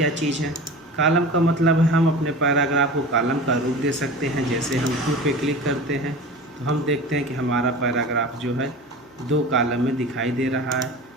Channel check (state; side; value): normal; both; correlation 0.35